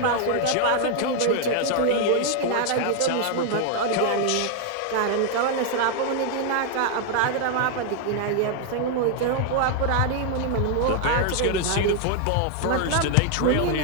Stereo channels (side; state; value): both; different; correlation 0.00